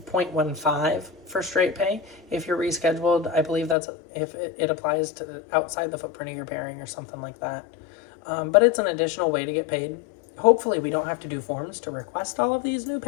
0.15 for straight pay. If you're rescheduled, I believe that's if it applies to outside the footprint of your pairing or something like that. But it's an additional way to get paid. Hopefully we don't have to do forms to request all of these new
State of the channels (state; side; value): drops out; right; at 3.8 s